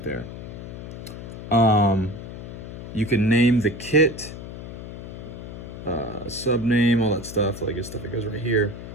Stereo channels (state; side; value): noise; left; hum, 10 dB below the sound